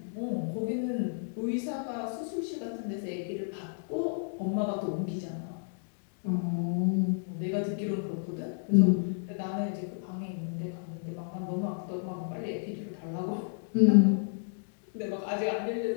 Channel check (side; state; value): right; silent; digital silence